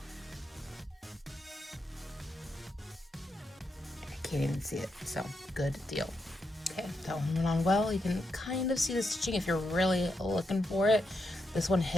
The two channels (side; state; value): both; normal; correlation 0.83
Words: Can't even see it, so good deal. Okay, that one went on well. You can kind of see the stitching if you're really looking for it. This one